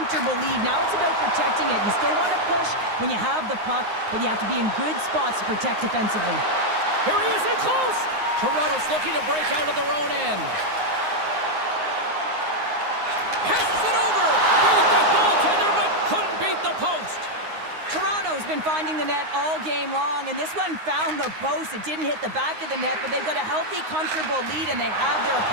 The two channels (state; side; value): late; left; 9.6 ms